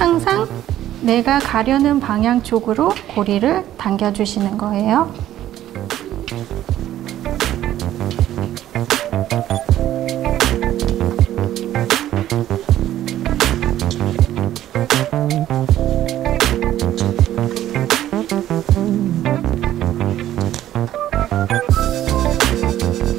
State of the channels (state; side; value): quieter; left; 12.7 dB